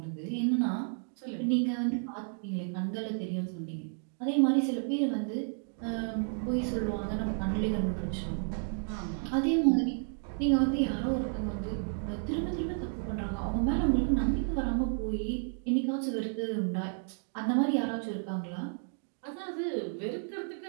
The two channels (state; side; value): silent; left; 57 dB below the other